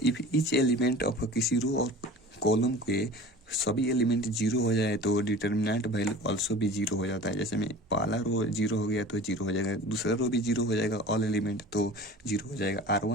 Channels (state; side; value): normal; both; correlation 0.40